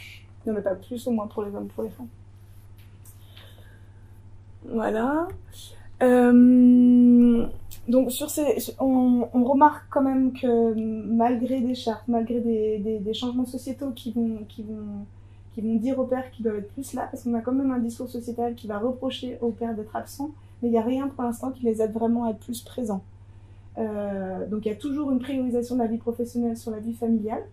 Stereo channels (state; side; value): identical; both; correlation 1.00